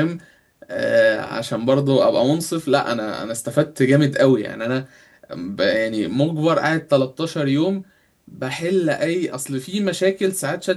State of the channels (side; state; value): both; identical; correlation 1.00